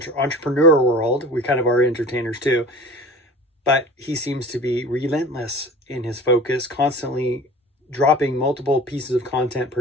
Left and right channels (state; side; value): normal; both; correlation 0.40